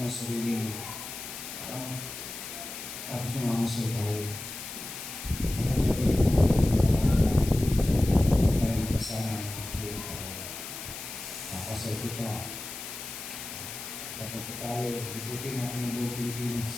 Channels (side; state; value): left; noise; hiss, 9 dB below the sound